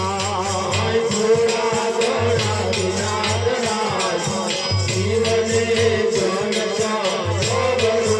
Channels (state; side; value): identical; both; correlation 1.00